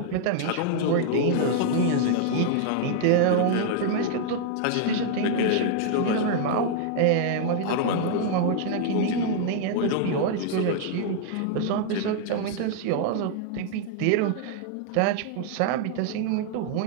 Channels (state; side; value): different; both; correlation -0.01